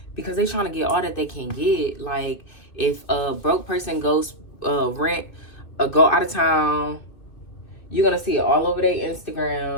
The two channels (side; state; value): right; late; 2.6 ms